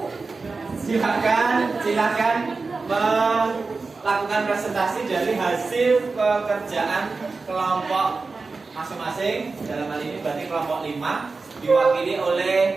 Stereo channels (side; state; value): left; quieter; 4.0 dB